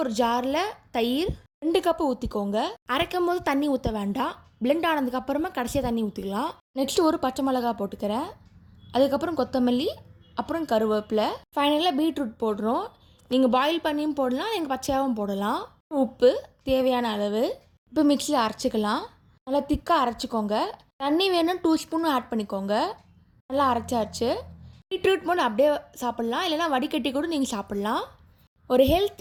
ஒரு ஜாரில் தயிர் 2 கப்பு ஊற்றிக்கோங்க. அரைக்கும் போது தண்ணி ஊற்ற வேண்டாம். பிளெண்ட் ஆனதுக்கப்புறமா கடைசியாக தண்ணி ஊற்றிக்கலாம். நெக்ஸ்ட்டு ஒரு பச்சை மிளகா போட்டுக்கிறேன். அதுக்கப்புறம் கொத்தமல்லி, அப்புறம் கருவேப்பிலை, ஃபைனலாக பீட்ரூட் போடுறோம். நீங்கள் பாயில் பண்ணியும் போடலாம், நீங்கள் பச்சையாகவும் போடலாம். உப்பு தேவையான அளவு. இப்போ மிக்ஸியில் அரைச்சிக்கலாம். நல்லா திக்காக அரைச்சிக்கோங்க. தண்ணி வேணும் 2 ஸ்பூன் ஆட் பண்ணிக்கோங்க. நல்லா அரைச்சாச்சு. பீட்ரூட் மோர் அப்படியே சாப்பிட்லாம், இல்லைனா வடிகட்டி கூட நீங்கள் சாப்பிட்லாம். ஒரு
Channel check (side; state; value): both; identical; correlation 1.00